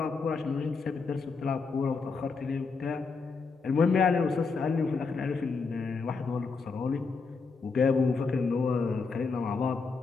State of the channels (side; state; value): right; quieter; 4.6 dB